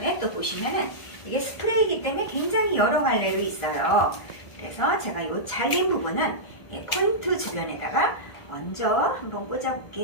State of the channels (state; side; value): late; right; 1.5 ms